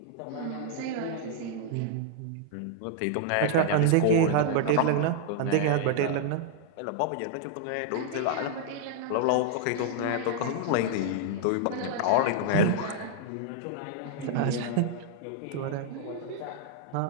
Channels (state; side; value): different; both; correlation -0.01